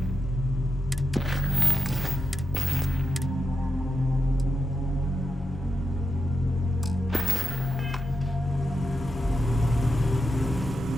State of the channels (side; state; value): both; normal; correlation 0.87